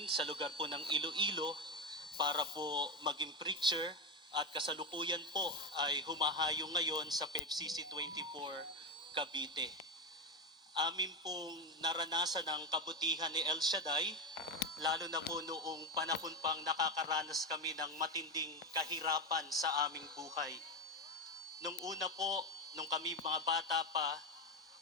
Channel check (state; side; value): normal; both; correlation 0.14